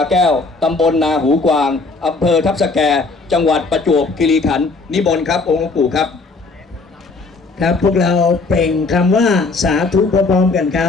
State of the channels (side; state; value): right; quieter; 3.8 dB